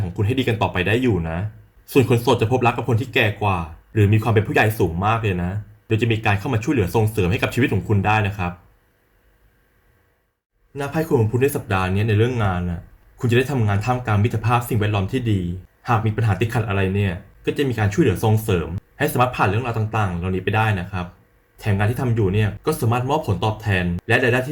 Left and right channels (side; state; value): both; identical; correlation 1.00